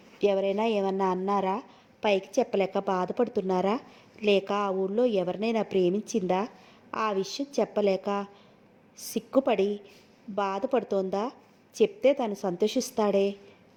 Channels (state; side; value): identical; both; correlation 1.00